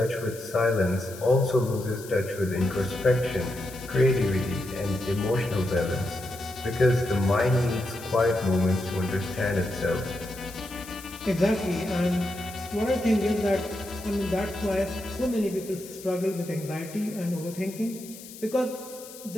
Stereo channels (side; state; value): left; noise; hiss, 16 dB below the sound